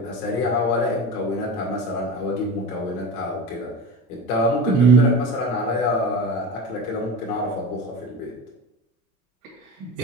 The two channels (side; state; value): both; normal; correlation 0.28